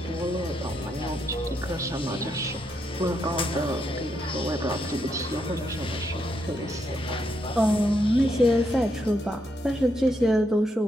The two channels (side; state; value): both; normal; correlation 0.79